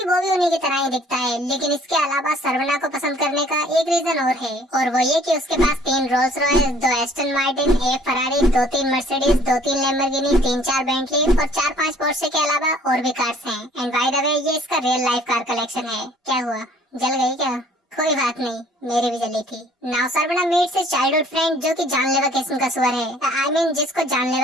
वो भी उन्हीं की तरह ही दिखता है। लेकिन इसके अलावा सर्वना को पसंद करने का एक रीजन और है, और वो ये कि उसके पास 3 Rolls Royce, 2 Aston Martin, 1 Ferrari, 2-3 Mercedes, 2-3 Lamborghini, 3-4 Bentley और 4-5 पोर्शे के अलावा और भी कार्स हैं। एंड बाय द वे ये इसका रियल लाइफ कार कलेक्शन है। क्या हुआ, जल गई क्या? कोई बात नहीं, मेरी भी जली थी। Now Saravana meets his childhood friend, जो कि जानलेवा किस्म का सुअर है। I mean, जिसको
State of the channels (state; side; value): normal; both; correlation 0.57